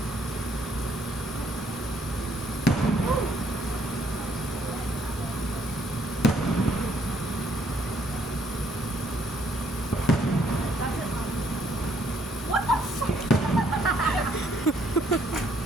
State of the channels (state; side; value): normal; both; correlation 0.68